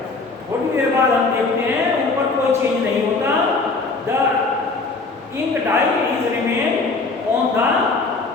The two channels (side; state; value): right; quieter; 3.9 dB